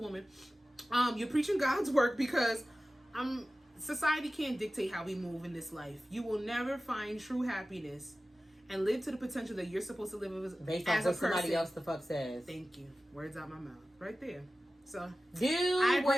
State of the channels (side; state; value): both; normal; correlation 0.95